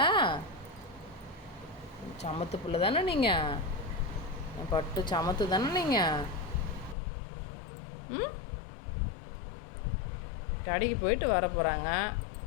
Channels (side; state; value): right; drops out; at 7.0 s